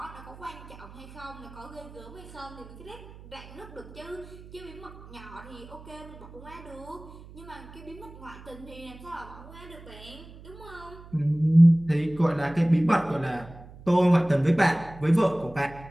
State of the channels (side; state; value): right; noise; hum, 18 dB below the sound